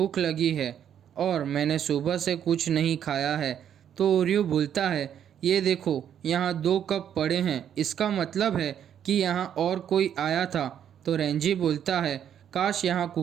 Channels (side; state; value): left; quieter; 9.4 dB